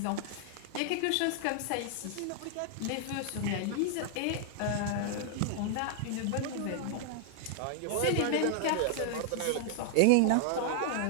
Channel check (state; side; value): different; both; correlation 0.00